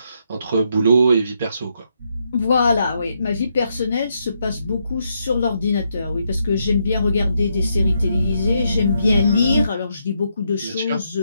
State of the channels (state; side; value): inverted; both; correlation -0.79